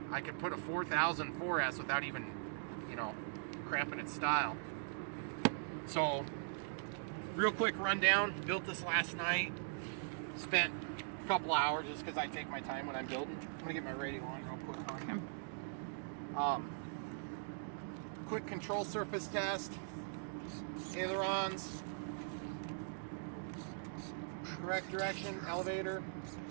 4000 4S without even, you know, cramping its style. So real quick rundown, built this last night, spent a couple hours just because I take my time when I'm building. I'm gonna get my radio on real quick on him. Quick control surface test, ailerons, correct direction, elevator,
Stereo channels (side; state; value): left; silent; digital silence